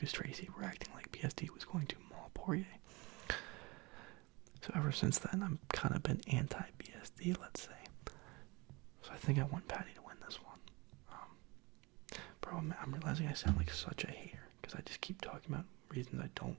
Tracy were acting like BSD was going to maul Poirier. So ever since then, I've kind of been anti-BSD, let's say. So I think I want Paddy to win this one. Bro, I'm realizing I sound like such a hater, because I just keep talking about reasons I don't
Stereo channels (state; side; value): quieter; left; 25.4 dB